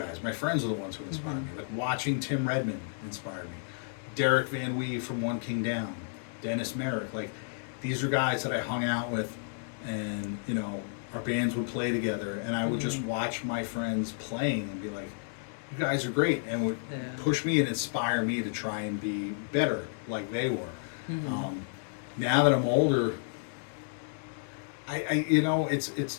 My friends are the ones who inspired me. Like watching Tim Redmond inspired me. Derek Van Wee from One King Down. Dennis Merrick. Like, these are guys that I hung out with, and our bands would play together, and I would just watch my friends playing and be like, you guys are great, and would push me and inspire me to try and be better like they were. now that I'm older, you know, at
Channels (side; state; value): right; silent; digital silence